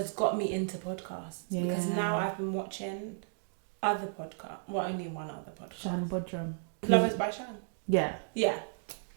got me into podcasts because now I've been watching other podcasts. Well, only one other podcast. Shan Bodrum. Lovers by Shan. Yeah.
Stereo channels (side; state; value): left; silent; digital silence